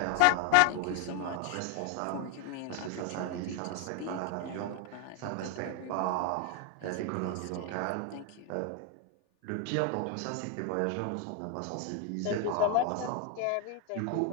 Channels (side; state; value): both; different; correlation 0.00